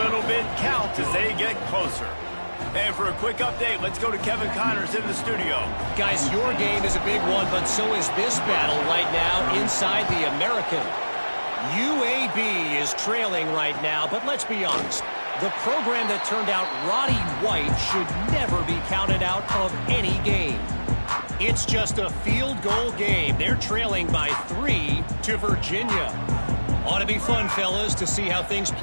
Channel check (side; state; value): both; inverted; correlation -1.00